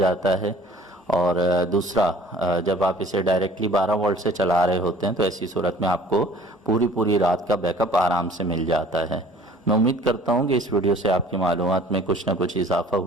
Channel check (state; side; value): normal; both; correlation 0.50